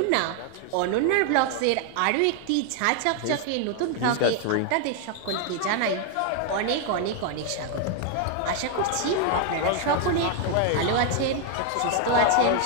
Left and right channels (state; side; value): different; both; correlation 0.01